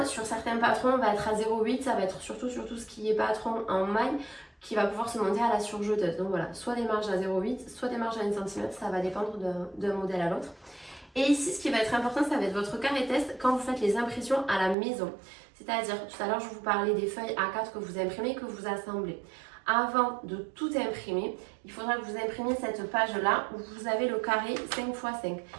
sur certains patrons, on va être à 0,8, ça va être surtout ce qui est patron en maille qui va pouvoir se monter à la surjeteuse. Donc voilà, soit des marges à 0,8, soit des marges à 1 cm, ça va dépendre d'un modèle à l'autre. Et ici, ce qui va être important, ça va être votre carré test quand vous faites les impressions à la maison. C'est-à-dire, tout à l'heure, je vous parlais des feuilles A4 que vous imprimez, que vous assemblez. Avant de tout imprimer, il faudra que vous imprimiez cette page-là où vous avez le carré 5 x 5.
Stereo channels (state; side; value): drops out; left; at 14.8 s